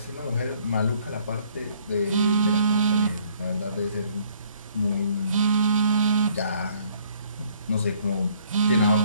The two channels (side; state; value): both; inverted; correlation -0.61